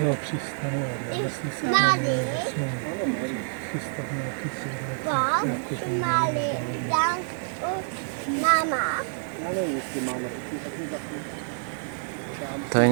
přistane, ale jestli se přistane nějaký To je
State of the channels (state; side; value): silent; left; digital silence